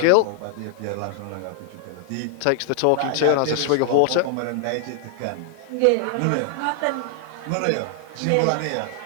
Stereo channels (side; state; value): both; different; correlation -0.01